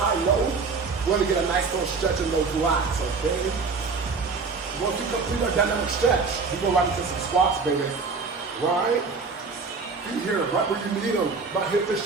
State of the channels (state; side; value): quieter; left; 4.6 dB